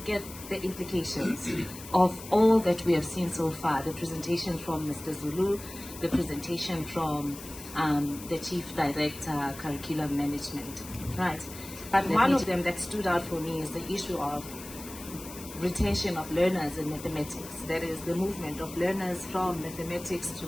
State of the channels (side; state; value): left; noise; hiss, 14 dB below the sound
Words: at the implications of all that we have seen so far. The presentation from Mr. Zulu, the presentation from the Chief Director, Curriculum Management, right? But one of them that stood out for me is the issue of retention of learners in mathematics. That is the movement of learners from mathematics to